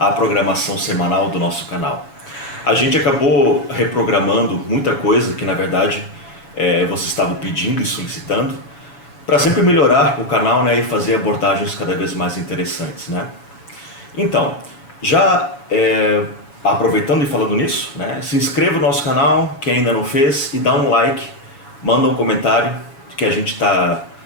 programação semanal do nosso canal. A gente acabou reprogramando muita coisa que na verdade vocês estavam pedindo e solicitando para sempre melhorar o canal, né, e fazer abordagens cada vez mais interessantes, né? Então, já aproveitando e falando nisso, né, se inscreva no nosso canal, quem ainda não fez, e dá um like, manda um comentário, que a gente está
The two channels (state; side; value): late; right; 7.1 ms